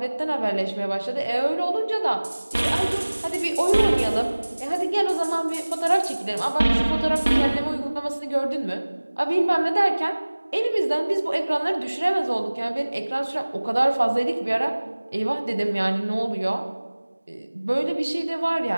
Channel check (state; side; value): inverted; both; correlation -1.00